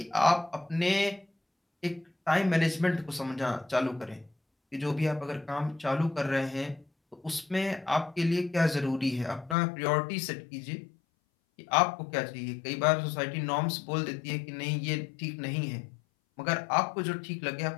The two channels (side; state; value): right; drops out; at 9.6 s